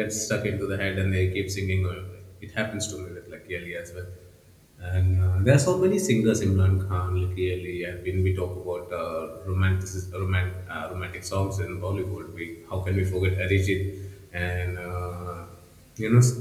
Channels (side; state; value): both; identical; correlation 1.00